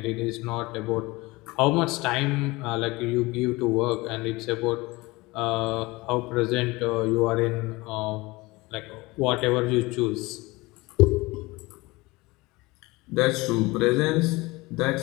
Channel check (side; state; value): right; quieter; 22.3 dB